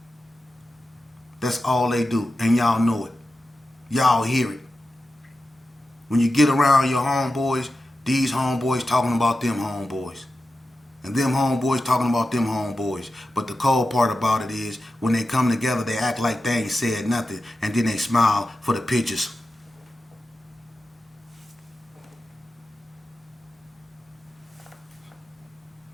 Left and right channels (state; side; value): normal; both; correlation 0.92